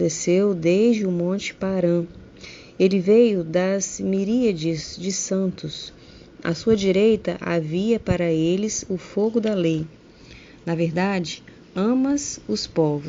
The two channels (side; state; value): both; identical; correlation 1.00